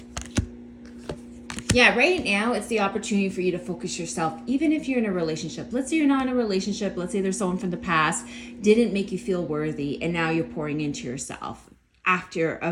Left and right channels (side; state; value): both; identical; correlation 1.00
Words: Yeah, right now it's the opportunity for you to focus yourself, even if you're in a relationship. Let's say you're not in a relationship. Let's say there's someone from the past didn't make you feel worthy, and now you're pouring into yourself